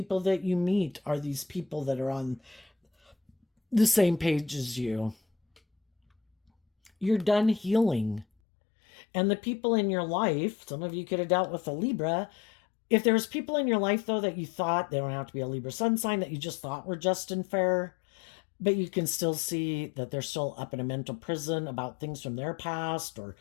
that you meet are these people that are on the same page as you. You're done healing. And the people in your life, some of you could have dealt with a Libra. If there's people in your life, though, that you thought, they don't have to be a Libra sun sign, that you just thought were just and fair, But you can still see that they're still up in a mental prison about things from their past, or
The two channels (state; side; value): drops out; right; at 8.2 s